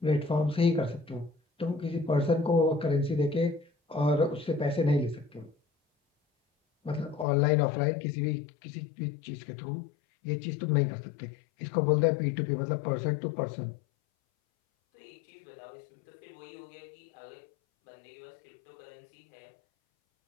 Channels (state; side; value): drops out; right; at 7.2 s